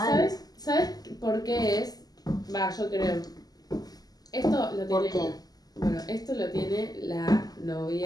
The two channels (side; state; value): right; late; 0.18 ms